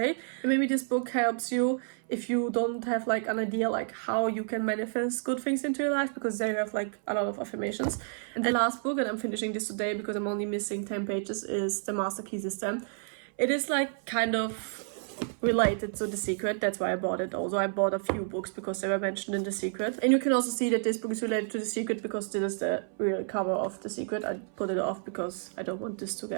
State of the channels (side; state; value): left; silent; 58 dB below the other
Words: And maybe this book helps you if you don't have like an idea like how you can manifest good things into your life, because they have like a lot of affirmations. And the last book, and I'm finishing this today because I'm only missing 10 pages, is The Master Key System. It is like kind of related to The Secret. That's why I bought it. Also, I bought a few books because they were mentioned in The Secret. And you can also see that this book is related to The Secret because this is the real cover of The Secret. I put it off because I don't want this to